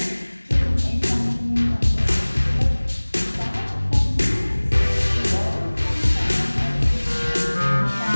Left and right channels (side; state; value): both; inverted; correlation -1.00